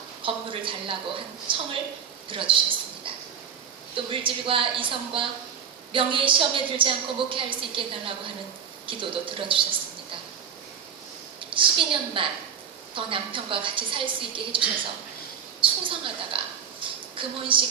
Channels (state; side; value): quieter; left; 7.5 dB